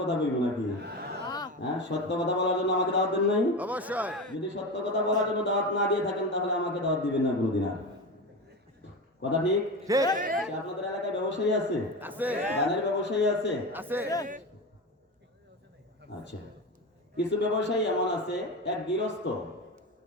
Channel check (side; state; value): both; normal; correlation 0.23